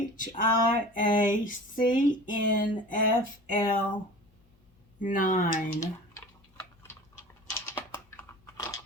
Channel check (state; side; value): normal; both; correlation 0.39